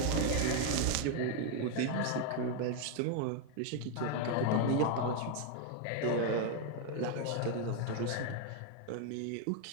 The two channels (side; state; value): both; different; correlation 0.00